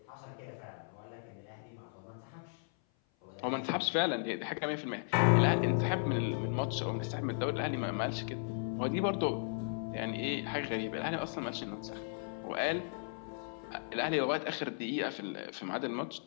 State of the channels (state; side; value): silent; right; 54 dB below the other